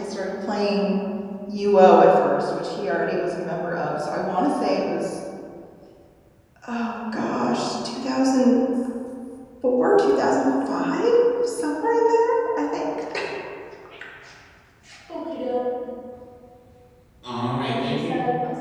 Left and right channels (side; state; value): both; identical; correlation 1.00